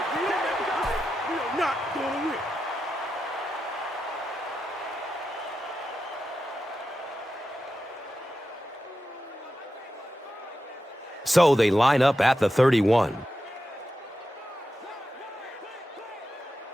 So they line up at the 31.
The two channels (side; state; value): both; normal; correlation 0.90